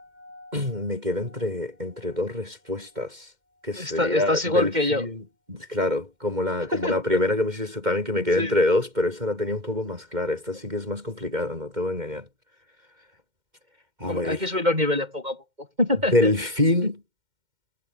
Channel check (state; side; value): late; left; 2.1 ms